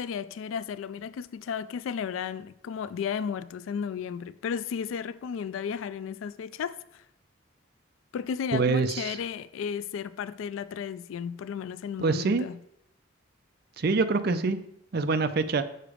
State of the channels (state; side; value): normal; both; correlation 0.24